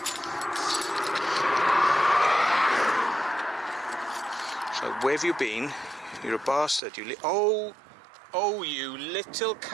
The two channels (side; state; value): left; drops out; at 6.8 s